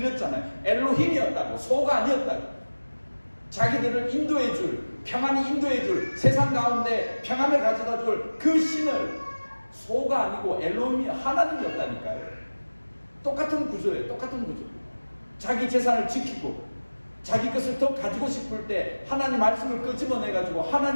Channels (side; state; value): both; inverted; correlation -1.00